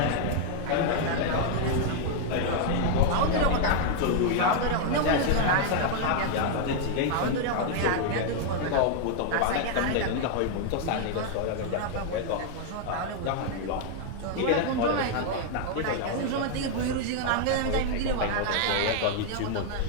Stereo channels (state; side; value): different; both; correlation 0.00